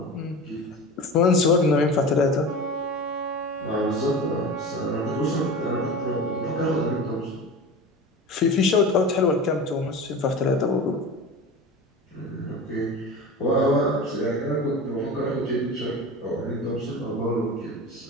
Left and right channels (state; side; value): normal; both; correlation 0.31